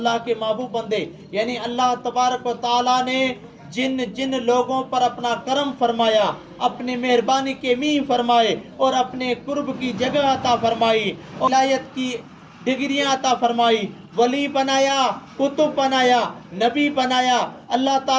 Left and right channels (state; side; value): identical; both; correlation 1.00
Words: کے محبوب بندے، یعنی اللہ تبارک و تعالیٰ نے جن جن لوگوں پر اپنا کرم فرمایا، اپنی مہربانی کے میاں فرمائے، اور اپنے قرب کی جگہ عطا فرمائی، ولایت کی ڈگریاں عطا فرمائی، ولی بنایا، کتب بنایا، نبی بنایا، اللہ